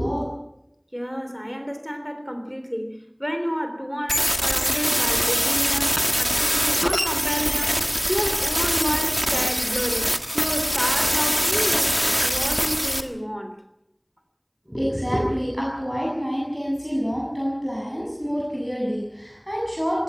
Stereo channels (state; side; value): identical; both; correlation 1.00